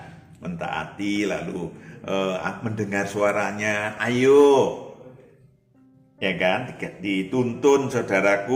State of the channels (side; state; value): both; identical; correlation 1.00